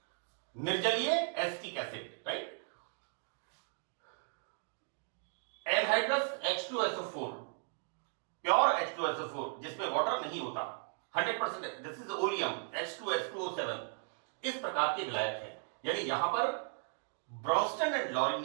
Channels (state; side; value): silent; left; 54 dB below the other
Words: निर्जलीय acetic acid, right. Anhydrous H2SO4, pure H2SO4 जिसमें वाटर नहीं होता, 100%, दिस इज ओलियम H2H2O7, इस प्रकार के विलायक है। यानी यहां पर ब्रॉन्स्टन एंड लाउरी